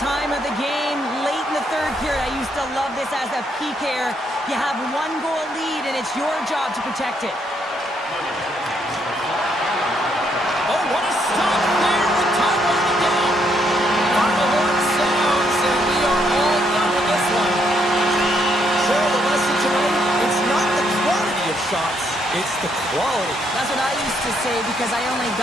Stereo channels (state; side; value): normal; both; correlation 0.73